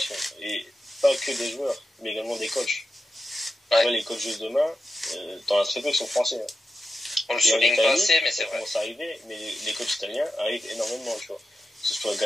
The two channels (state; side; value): normal; both; correlation 0.90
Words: Et pas que des joueurs, mais également des coachs. Ouais. Tu vois, les coachs de demain, dans la très peu qui sont français. Hein. On le souligne pas assez, mais c'est vrai. Ça commence à arriver, mais les coachs italiens arrivent énormément, tu vois. Que ce soit